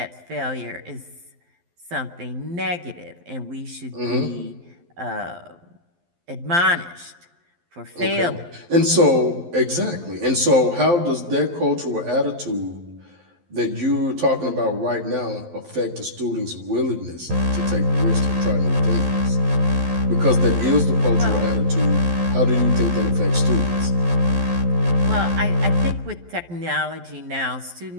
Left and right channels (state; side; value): late; left; 12 ms